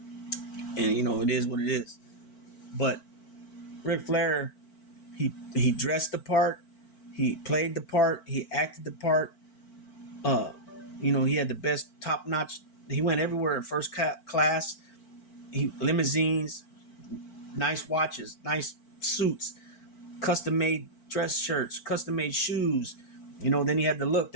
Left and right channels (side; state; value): right; late; 4.5 ms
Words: it is what it is. But Ric Flair, he dressed the part, he played the part, he acted the part. He had the best top notch. He went everywhere in first class. Limousines, nice watches, nice suits, custom made dress shirts, custom made shoes. Then he had the look,